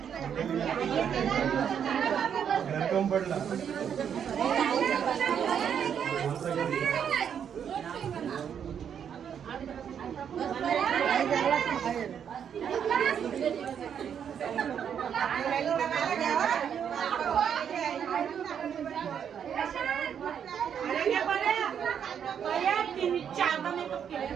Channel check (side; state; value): left; quieter; 8.2 dB